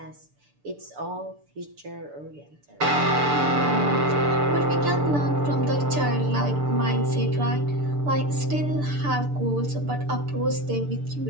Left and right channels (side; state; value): left; late; 6.8 ms